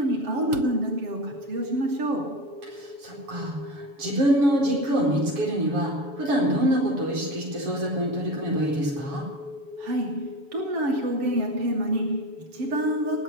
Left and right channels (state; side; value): late; left; 7.1 ms